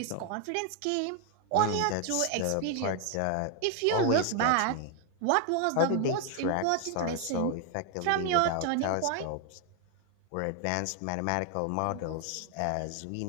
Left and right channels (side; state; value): both; different; correlation 0.01